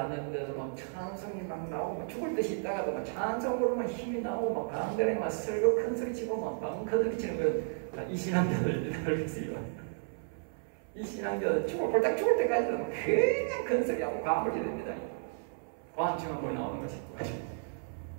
하는데도 막 찬송이 막 나오고, 막 죽을 듯이 있다가도 막 찬송 부르면 힘이 나오고, 막 가운데에 막 설교 큰 소리 치고, 막 방커들이 치는 거, 이 신앙자들 알겠어요. 이 신앙자들 꼴딱 죽을 때까지도 그냥 큰 소리하고 과물이 됩니다. 과음증 한번 나오는 것이.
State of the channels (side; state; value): left; silent; 56 dB below the other